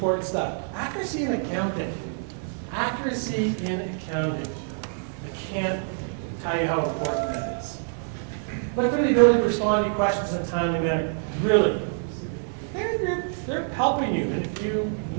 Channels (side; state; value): left; silent; digital silence